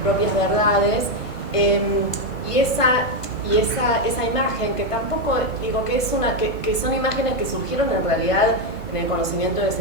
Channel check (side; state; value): right; late; 1.5 ms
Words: propias verdades, y esa imagen que tampoco digo que que son imágenes que surgieron en realidad en el conocimiento del